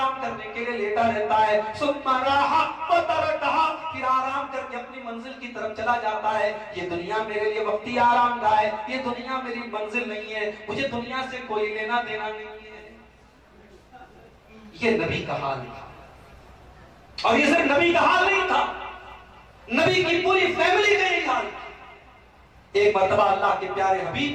करने के लिए लेटा रहता है। सुम्मा राहा व तरकहा, फिर आराम करके अपनी मंजिल की तरफ चला जाता है। ये दुनिया मेरे लिए वक्ती आराम गाह है, ये दुनिया मेरी मंजिल नहीं है, मुझे दुनिया से कोई लेना देना नहीं है। ये नबी का हाल था। और ये सिर्फ नबी का हाल नहीं था, नबी की पूरी फैमिली का यही हाल था। एक मर्तबा अल्लाह के प्यारे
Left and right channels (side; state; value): both; identical; correlation 1.00